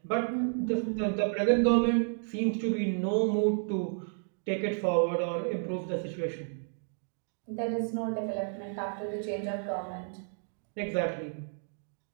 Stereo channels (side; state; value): left; silent; digital silence